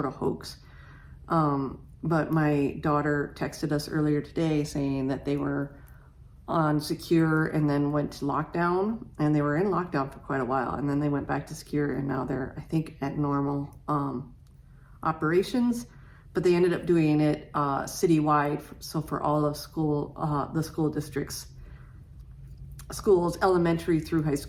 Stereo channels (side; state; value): both; identical; correlation 1.00